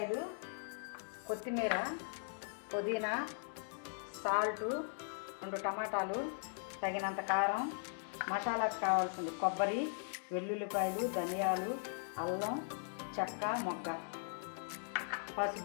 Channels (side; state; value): right; silent; digital silence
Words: కొత్తిమీర, పుదీనా, సాల్టు, 2 టమాటాలు, తగినంత కారం, మసాలాకు కావాల్సింది కొబ్బరి, వెల్లుల్లిపాయలు, ధనియాలు, అల్లం, చెక్క, మొగ్గ,